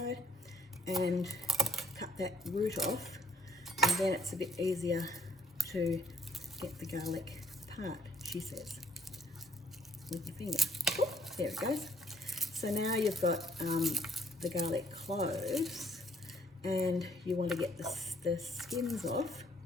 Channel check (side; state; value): both; normal; correlation 0.68